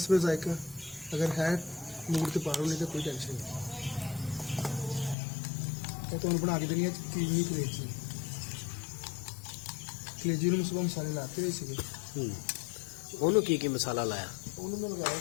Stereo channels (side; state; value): right; drops out; at 5.2 s